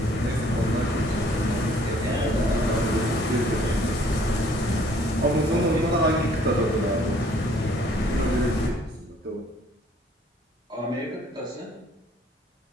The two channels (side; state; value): both; normal; correlation 0.60